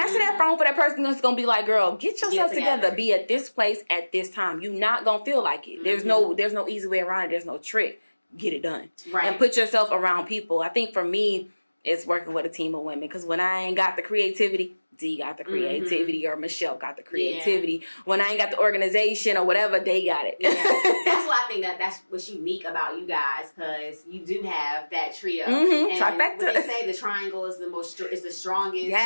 that phone for that person that's going to be like, girl, get yourself together. Be at this place at this time. You're not going to feel like it. There's no easy way around it. There's no trick. Get it done. Right. And put yourself around people. I think for me, it's working with a team of women. Because when I ain't got the creativity, D got the creativity or Michelle got the creativity. Yeah. When I ain't got the organization or whatever, they got it. Yeah. That's why I think that's what's unique about you guys, because you do have that trio. And what they say, the triangle is the strongest.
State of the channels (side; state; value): both; inverted; correlation -1.00